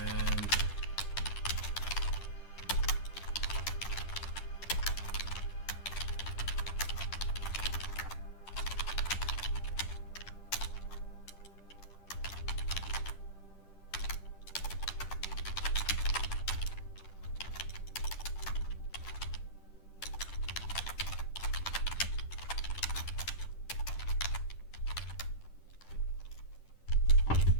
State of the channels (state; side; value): late; right; 10 ms